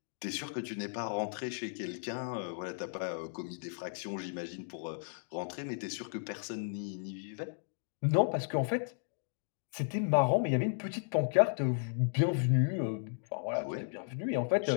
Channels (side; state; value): right; silent; digital silence